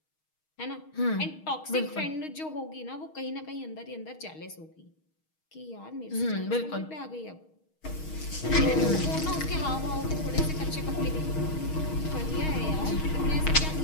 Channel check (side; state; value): right; late; 6.4 ms